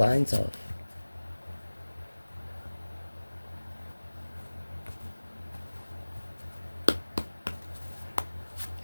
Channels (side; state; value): both; inverted; correlation -1.00